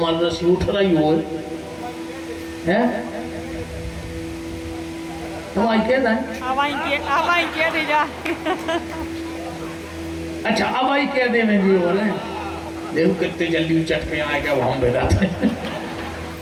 रसी उठ रही हो है। तो आई कह दे जा। अच्छा अब आई कह दे में जी बोले देखो कितने जल्दी चट पे आएगा वो हम बेटा।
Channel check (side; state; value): both; identical; correlation 1.00